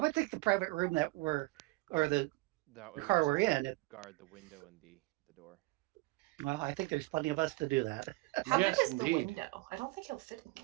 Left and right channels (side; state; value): left; quieter; 22.0 dB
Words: think the private room the car we're in. Guard the window and the door. Well, I think there's plenty of us to do that. How big is the window? I don't think he'll fit in the